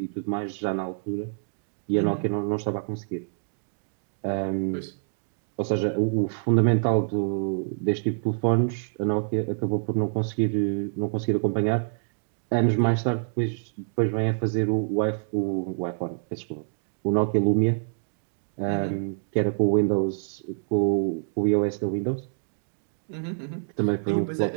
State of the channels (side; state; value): left; silent; digital silence